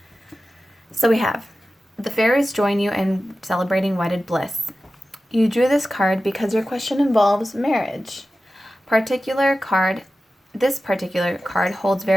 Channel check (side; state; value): both; normal; correlation 0.94